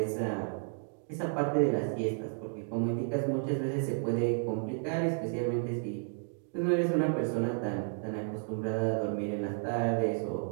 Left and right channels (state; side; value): silent; left; 56 dB below the other